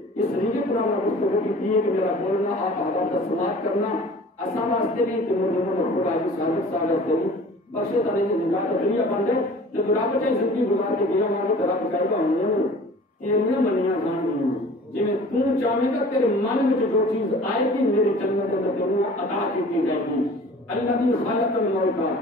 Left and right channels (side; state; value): both; normal; correlation 0.45